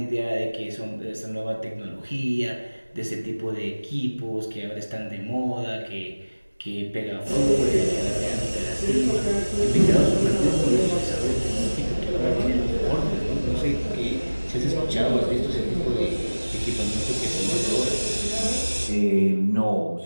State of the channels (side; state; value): both; inverted; correlation -1.00